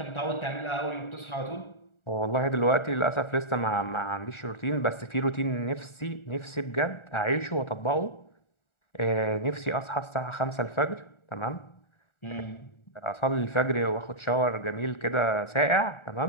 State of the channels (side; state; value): right; late; 1.4 ms